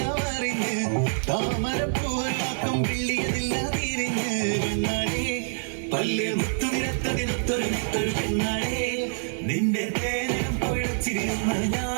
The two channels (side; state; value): left; silent; digital silence